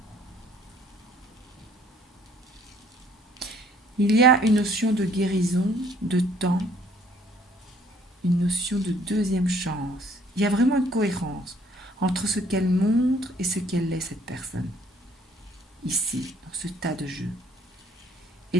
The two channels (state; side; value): normal; both; correlation 0.61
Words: Il y a une notion de guérison, de temps, une notion de deuxième chance. Il y a vraiment une cohérence entre ce qu'elle montre et ce qu'elle est, cette personne. Ici, dans ce tas de jeu. Et